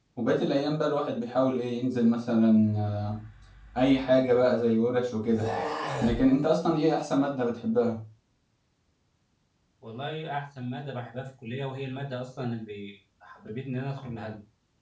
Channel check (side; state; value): both; identical; correlation 1.00